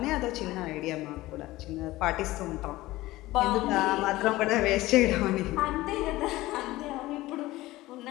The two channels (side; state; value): right; quieter; 17.9 dB